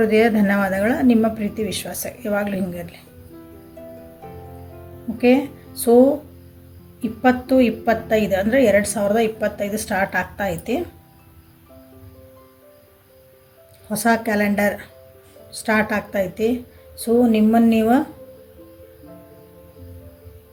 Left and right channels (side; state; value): both; identical; correlation 1.00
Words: ಹೃದಯ ಧನ್ಯವಾದಗಳು. ನಿಮ್ಮ ಪ್ರೀತಿ ವಿಶ್ವಾಸ ಯಾವಾಗಲೂ ಹಿಂಗಿರಲಿ. ಓಕೆ, ಸೊ 2025 ಅಂದರೆ 2025 ಸ್ಟಾರ್ಟ್ ಆಗ್ತಾ ಐತಿ. ಹೊಸ ಕ್ಯಾಲೆಂಡರ್ ಸ್ಟಾರ್ಟ್ ಆಗ್ತಾಯಿತಿ. ಸೊ ನಿಮ್ಮನ್ನು ನೀವು